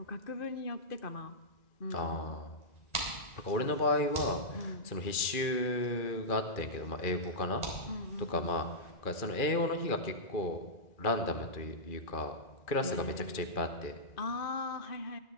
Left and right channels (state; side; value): late; right; 2.4 ms